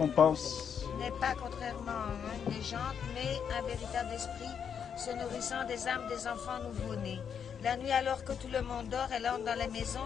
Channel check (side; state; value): right; quieter; 7.5 dB